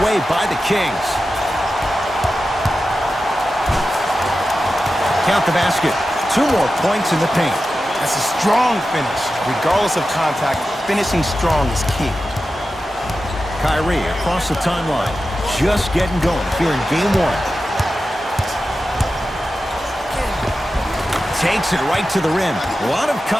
by the Kings. Count the basket. 2 more points in the paint. That's a strong finish. Regardless of contact, finishing strong is key. Kyrie across the timeline. Just getting going here in game one. Takes it right to the rim. A lot of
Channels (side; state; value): both; normal; correlation 0.92